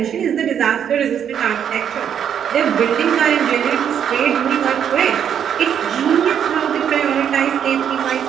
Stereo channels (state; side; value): quieter; left; 8.7 dB